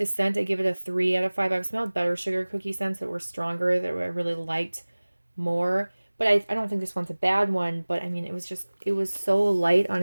scent, I give it a 3 out of 5. I've smelled better sugar cookie scents that were stronger, that I really liked more. But I don't think this one's a bad one, but I mean, it was so light on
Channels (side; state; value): both; inverted; correlation -1.00